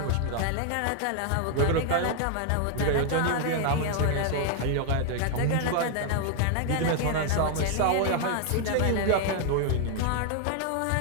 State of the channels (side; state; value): both; different; correlation 0.00